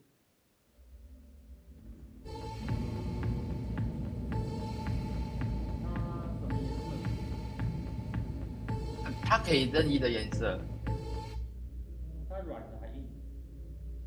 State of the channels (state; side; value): identical; both; correlation 1.00